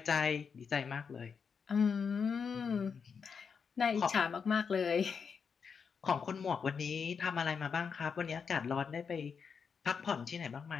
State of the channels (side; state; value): right; quieter; 6.1 dB